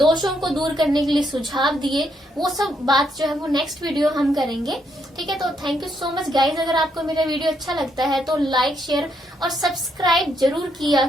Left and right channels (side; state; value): both; normal; correlation 0.76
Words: को दूर करने के लिए सुझाव दिए, वो सब बात जो है वो नेक्स्ट वीडियो हम करेंगे। ठीक है, तो thank you so much guys. अगर आपको मेरा वीडियो अच्छा लगता है तो लाइक, शेयर और सब्सक्राइब जरूर किया